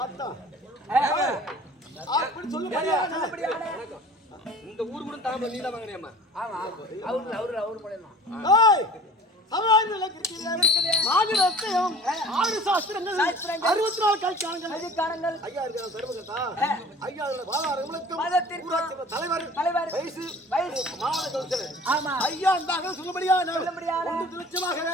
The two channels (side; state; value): both; normal; correlation 0.45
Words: அப்படி சொல்ல முடியாது. இந்த ஊர் கூட தாம நீல வாங்கறியாமா? ஆமா. அவரு மூலமா. ஏய் சமாஜத்துல இருக்குது. மாநிலத்தையும் ஆறு சாஸ்திரங்கள் 64 கல்காணங்கள் ஐயா இருக்காங்க தர்மகர்த்தா. ஐயா அதோட வாதாரங்களுக்கு தலைவர் வயசு மாவட்ட கவுன்சிலர். ஆமா. ஐயா இருந்தாங்க சொல்ல முடியாது. 1 லட்சமாக